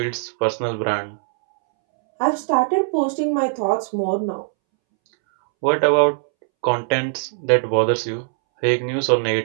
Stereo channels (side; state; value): left; silent; 65 dB below the other